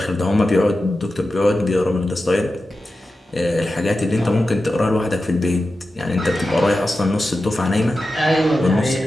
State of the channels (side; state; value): both; normal; correlation 0.92